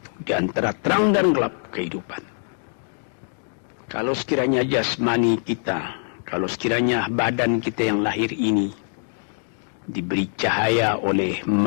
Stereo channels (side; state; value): right; silent; digital silence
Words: di antara terang dan gelap kehidupan. Kalau sekiranya jasmani kita, kalau sekiranya badan kita yang lahir ini diberi cahaya oleh